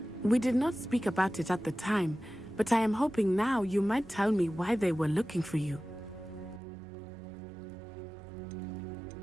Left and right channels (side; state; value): left; drops out; at 6.6 s